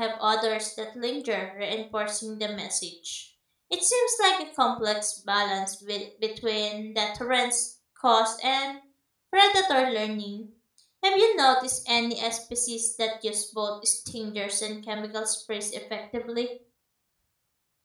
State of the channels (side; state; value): both; identical; correlation 1.00